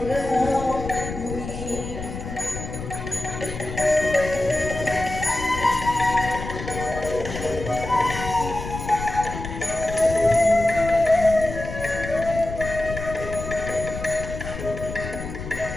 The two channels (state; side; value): noise; left; rumble, 8 dB below the sound